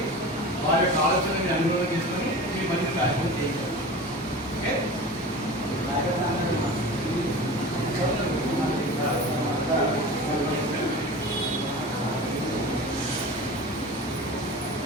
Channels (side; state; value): both; normal; correlation 0.34